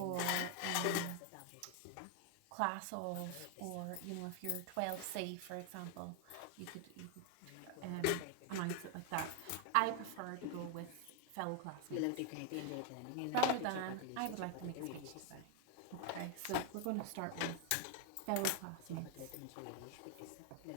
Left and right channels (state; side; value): different; both; correlation 0.00